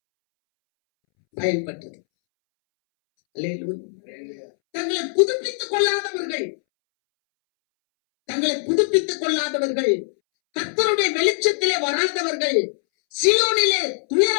பயன்பட்டது. அல்லேலூயா. தங்களை புதுப்பித்துக் கொள்ளாதவர்கள், தங்களை புதுப்பித்துக் கொள்ளாதவர்கள், கர்த்தருடைய வெளிச்சத்திலே வராதவர்கள், சீயோனிலே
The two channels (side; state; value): right; silent; 64 dB below the other